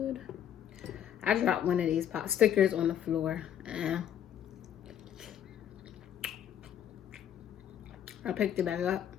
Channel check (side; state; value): right; quieter; 10.0 dB